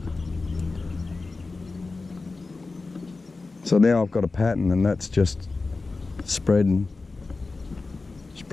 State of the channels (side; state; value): right; quieter; 3.7 dB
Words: So now I've got a pattern, and that's just spread and